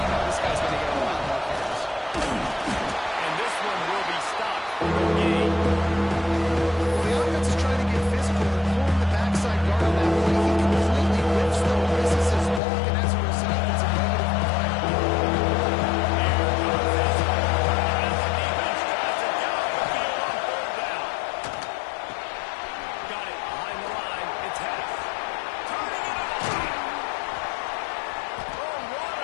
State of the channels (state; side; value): drops out; right; at 12.6 s